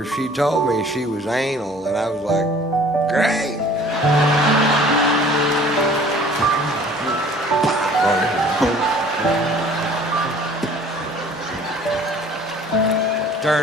she told me she was anal, and I was like, great.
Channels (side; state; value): both; normal; correlation 0.51